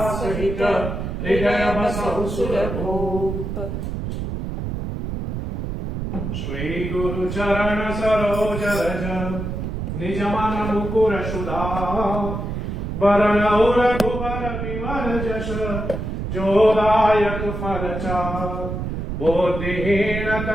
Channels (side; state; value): right; noise; rumble, 4 dB below the sound